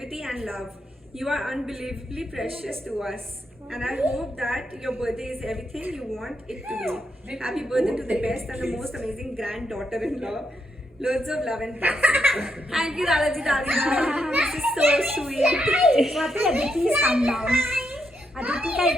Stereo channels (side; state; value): both; normal; correlation 0.80